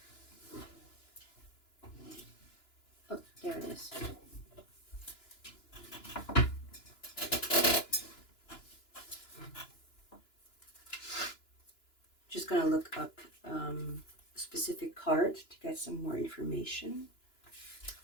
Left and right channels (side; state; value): right; late; 2.9 ms